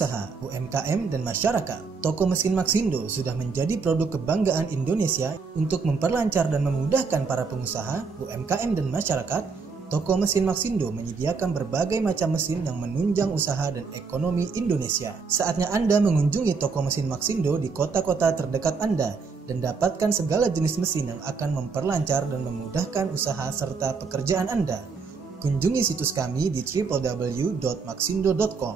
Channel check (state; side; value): quieter; left; 4.9 dB